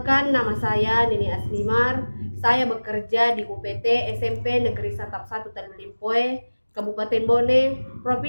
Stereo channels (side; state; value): both; inverted; correlation -1.00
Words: nama saya Nini Asmimar. Saya bekerja di UPT SMP Negeri Satap 1 Tanulimpoe, Kabupaten Bone,